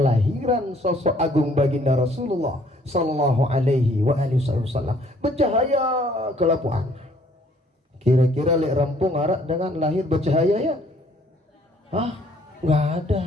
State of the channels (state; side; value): normal; both; correlation 0.61